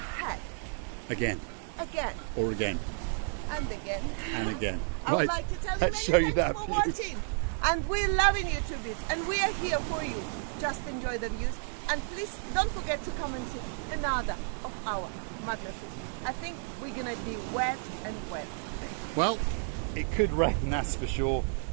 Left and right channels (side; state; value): left; silent; 57 dB below the other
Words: Again. Again. Or again. And again. And again. I would like to tell you Let's many show you thanks that for view. watching. And we're loving you to bits. And we are here for you. Just enjoy the views. And please don't forget to come and see another of our madnesses. I think we're going to be wet and wet. Well, it could rain, that's for sure.